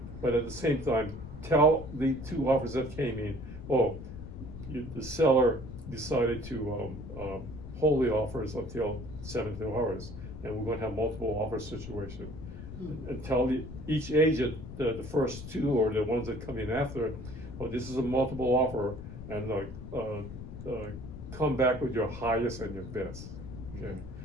but at the same time, tell the 2 offers that came in, the seller decided to hold the offers until 72 hours, and we're gonna have multiple offer situation. And tell each agent, the first 2 or the ones that come in after, this is a multiple offer, and come back with your highest and your best, okay?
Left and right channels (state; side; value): noise; left; rumble, 11 dB below the sound